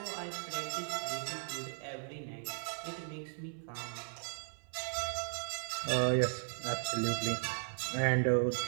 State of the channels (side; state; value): left; silent; 53 dB below the other